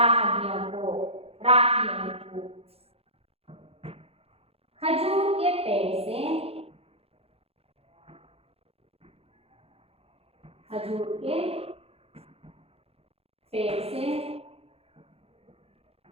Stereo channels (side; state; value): left; late; 0.29 ms